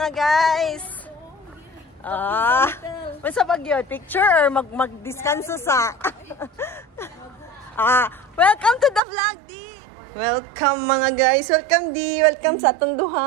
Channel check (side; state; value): left; drops out; at 9.0 s